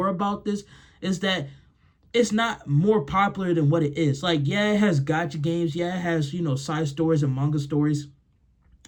about this is that it's not more popular than what it is. Like, yeah, it has gotcha games. Yeah, it has side stories and manga stories.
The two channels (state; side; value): identical; both; correlation 1.00